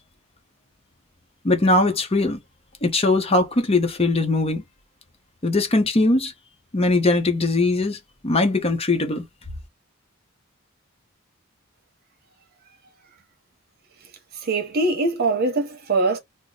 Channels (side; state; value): both; normal; correlation 0.41